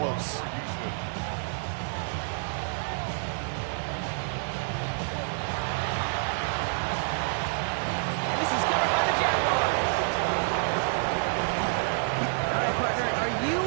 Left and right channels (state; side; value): silent; left; 59 dB below the other